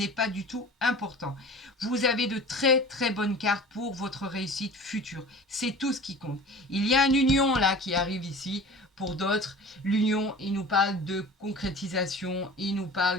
pas du tout important. Vous avez de très très bonnes cartes pour votre réussite future. C'est tout ce qui compte. Il y a une union là qui arrive ici. Pour d'autres, l'union, il nous parle de concrétisation, il nous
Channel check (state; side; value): normal; both; correlation 0.39